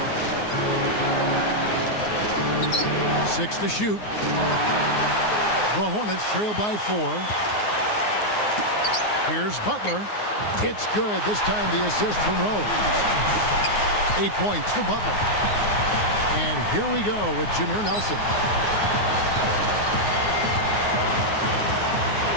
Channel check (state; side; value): late; right; 9.6 ms